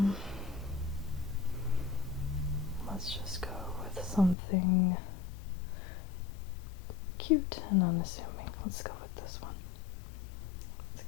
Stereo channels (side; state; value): right; drops out; at 4.4 s